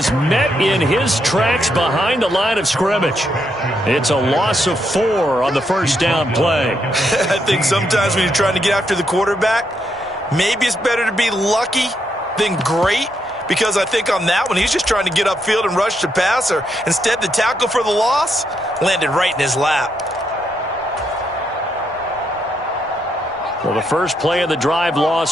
met in his tracks behind the line of scrimmage. It's a loss of 4 on the 1st down play. I think sometimes when you're trying to get after the quarterback, maybe it's better to be lucky than great. Because I think on that one, he's just trying to get upfield and rush the passer. Instead, the tackle for the loss landed right in his lap. Well, the first play of the drive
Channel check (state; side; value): normal; both; correlation 0.79